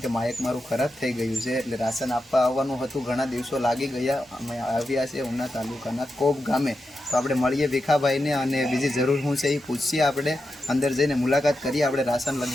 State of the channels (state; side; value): normal; both; correlation 0.88